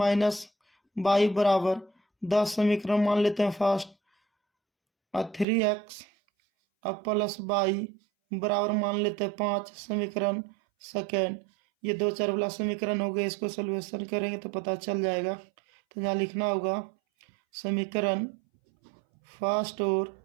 by बराबर 10, समीकरण मान लेते हैं फर्स्ट, और 3x अब प्लस बाई बराबर मान लेते हैं 5, समीकरण सेकेंड। ये 2 4 वाला समीकरण हो गया, इसको सॉल्यूशन करेंगे तो पता चल जाएगा। तो यहाँ लिखना होगा समीकरण फर्स्ट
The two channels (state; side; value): drops out; left; at 5.5 s